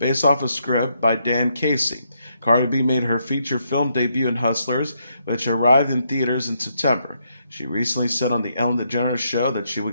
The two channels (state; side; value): inverted; both; correlation -0.77